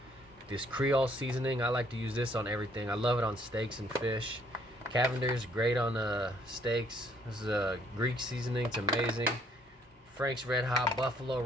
This Creole seasoning, I like to use this on everything. I love it on steaks and fish. Cavender's great on steaks. This is a Greek seasoning, it's amazing. Frank's Red Hot, Buffalo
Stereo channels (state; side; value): normal; both; correlation 0.64